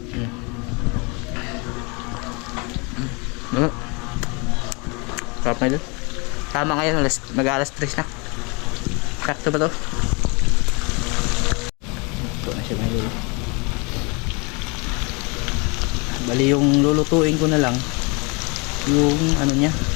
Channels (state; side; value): quieter; right; 30.4 dB